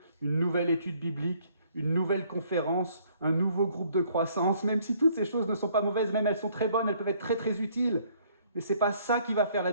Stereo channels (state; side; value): inverted; both; correlation -0.62